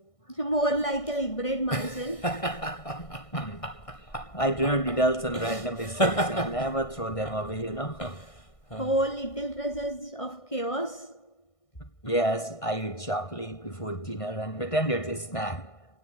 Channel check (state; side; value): late; right; 1.6 ms